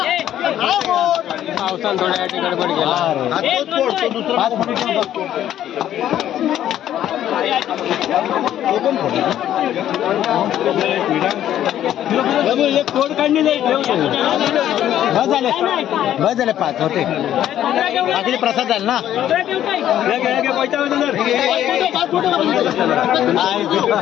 पावसान थोड्या गडबड गेला. एक कोड काढणी नाही बस झाले पाच होते बाकी प्रसाद झाले ना.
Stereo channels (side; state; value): right; quieter; 11.5 dB